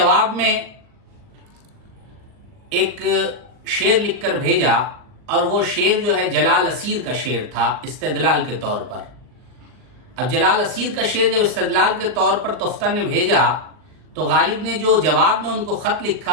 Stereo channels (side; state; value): left; late; 39 ms